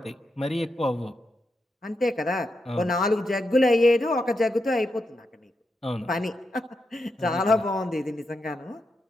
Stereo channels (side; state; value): both; normal; correlation 0.85